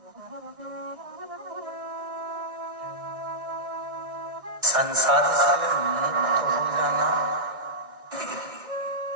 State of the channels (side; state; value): left; late; 1.6 ms